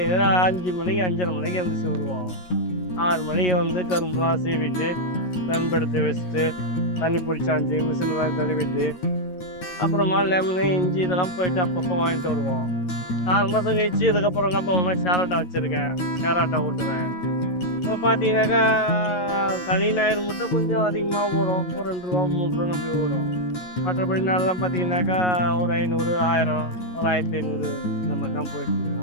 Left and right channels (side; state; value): right; late; 11 ms